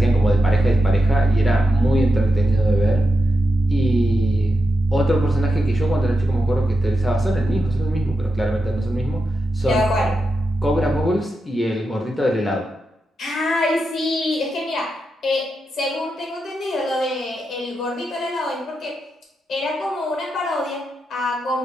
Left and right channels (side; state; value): both; normal; correlation 0.87